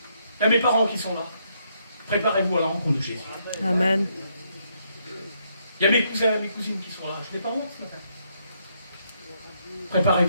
Il y a mes parents qui sont là. Préparez-vous à la rencontre de Jésus. Amen. Il y a mes cousins et mes cousines qui sont là. Je n'ai pas honte ce matin.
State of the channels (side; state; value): both; inverted; correlation -0.75